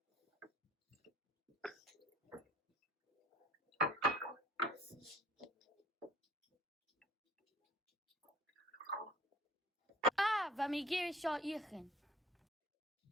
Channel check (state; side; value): normal; both; correlation 0.53